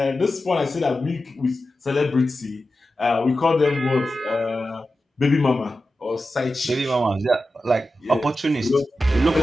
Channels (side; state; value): both; normal; correlation 0.92